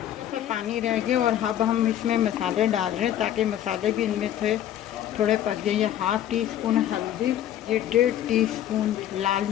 पानी रह गया, और अब हम इसमें मसाले डाल रहे हैं ताकि मसाले भी इनमें थे थोड़े पक जाए। ये 1/2 टीस्पून हल्दी, ये 1.5 टीस्पून लाल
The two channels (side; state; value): right; quieter; 11.4 dB